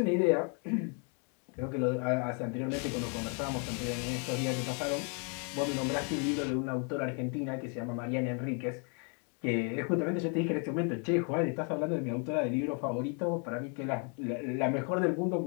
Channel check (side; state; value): right; quieter; 38.4 dB